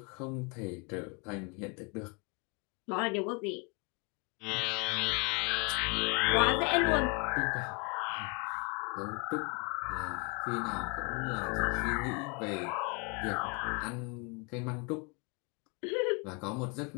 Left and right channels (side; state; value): right; quieter; 32.5 dB